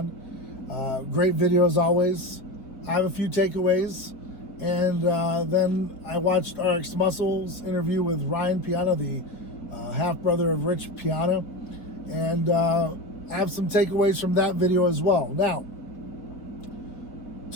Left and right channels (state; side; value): late; right; 4.5 ms